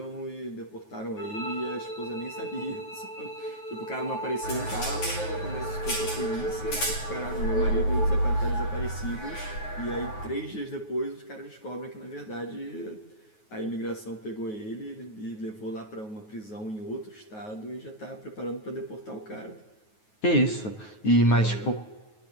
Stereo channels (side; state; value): right; late; 9.4 ms